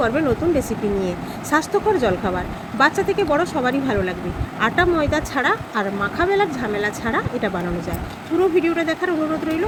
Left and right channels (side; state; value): both; identical; correlation 1.00